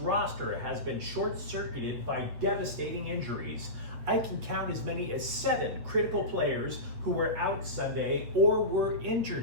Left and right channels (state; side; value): late; left; 8.6 ms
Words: has been short-circuited by devastating injuries. I can count as many as 7 critical players who were out Sunday or were